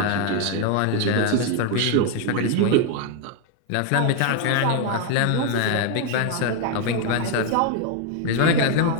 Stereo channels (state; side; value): different; both; correlation 0.01